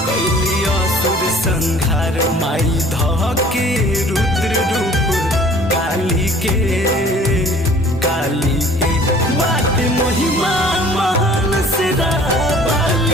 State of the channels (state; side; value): normal; both; correlation 0.51